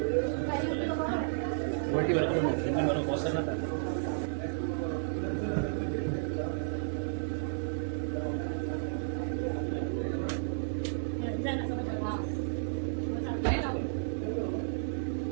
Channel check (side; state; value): left; silent; digital silence